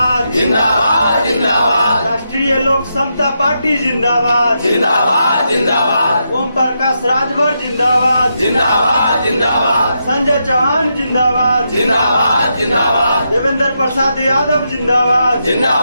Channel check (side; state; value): both; inverted; correlation -0.83